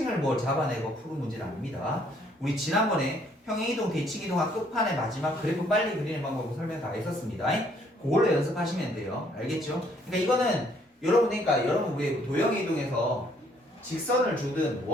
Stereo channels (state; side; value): normal; both; correlation 0.65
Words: 뭘 잡아내고 푸는 문제는 아닙니다. 우리 지난번에 평행이동, 대칭이동학 끝판에 마지막 그래프 빨리 그리는 방법을 설명 다 했었습니다. 그걸로 연습하시면 돼요. 알겠죠? 그러니까 이거는 여러분 왜 도형의 이동에서 직선을 주든